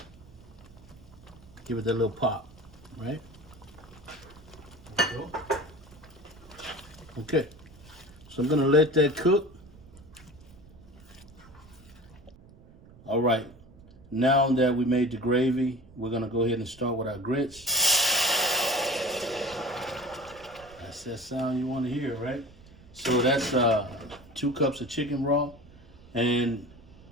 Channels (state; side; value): noise; right; rumble, 23 dB below the sound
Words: Give it that little pop, right? There we go. Okay, so I'm gonna let that cook. All right, now that we made the gravy, we're gonna go ahead and start with our grits. That's that sound you wanna hear, right? So that's 2 cups of chicken raw. And